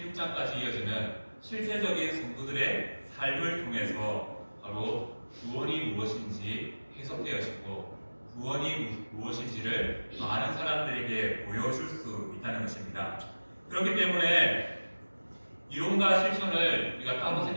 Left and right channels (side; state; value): both; inverted; correlation -1.00